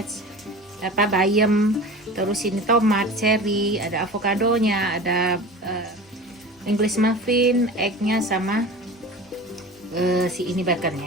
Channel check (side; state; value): both; normal; correlation 0.35